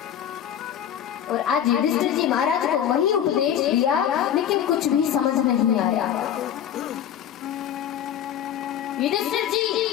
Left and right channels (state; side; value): quieter; right; 9.8 dB